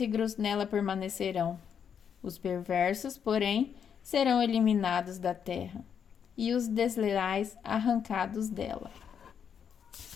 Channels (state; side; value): quieter; right; 7.7 dB